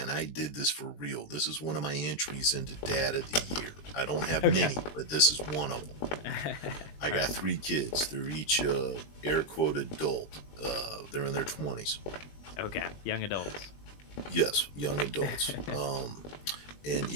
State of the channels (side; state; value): right; late; 20 ms